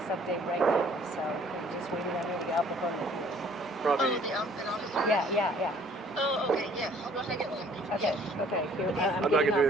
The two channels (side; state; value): both; normal; correlation 0.57